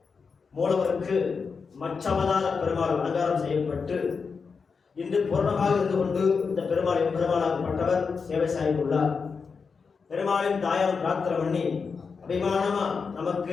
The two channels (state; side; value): quieter; right; 5.3 dB